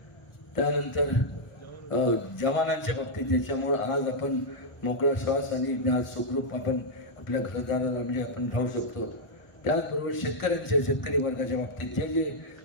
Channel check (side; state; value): right; late; 1.5 ms